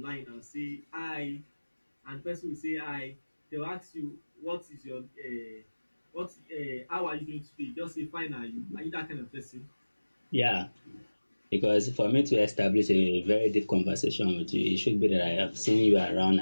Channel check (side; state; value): both; inverted; correlation -1.00